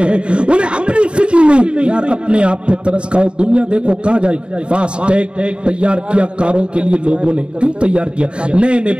ہیں، انہیں اپنی فکر نہیں. یار اپنے آپ پہ ترس کھاؤ، دنیا دیکھو کہاں جائے. فاسٹ ٹیگ تیار کیا کاروں کے لیے لوگوں نے، کیوں تیار کیا؟ نئے نئے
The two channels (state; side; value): late; left; 0.055 ms